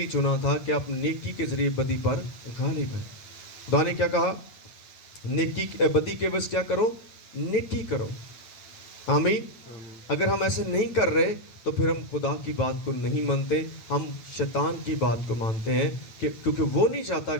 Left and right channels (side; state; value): right; late; 9.2 ms